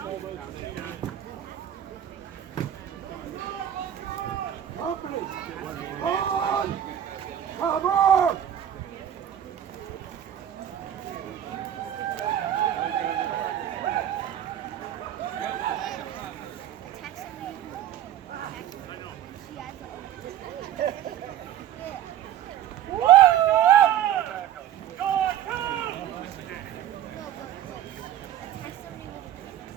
Company! On! Cover!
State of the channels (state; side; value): quieter; left; 10.9 dB